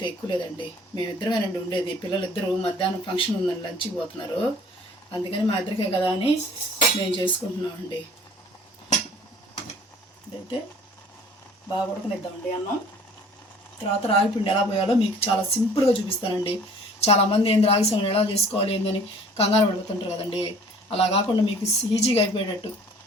ఎక్కువ లేదండి. మేమిద్దరమేనండి ఉండేది. పిల్లలిద్దరూ మధ్యాహ్నం ఫంక్షన్ ఉందని లంచ్కి పోతున్నారు, అందుకని మా ఇద్దరికే కదా అని మేము చేసుకుంటున్నామండి. ఇదైతే బాగా ఉడకనిద్దామండి అన్నం. తర్వాత రాగి పిండి ఎలా పోయాలో మీకు చాలా సింపుల్గా చూపిస్తానండి. చాలామంది ఏంది రాగి సంగటి ఎలా చేసుకోవాలి ఏందని కంగారు పడుతుంటారు కదండి. అలా కాకుండా మీకు ఈజీగా అయిపోయేటట్టు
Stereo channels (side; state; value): both; normal; correlation 0.51